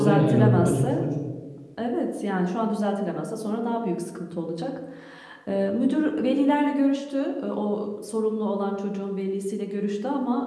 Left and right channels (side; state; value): both; identical; correlation 1.00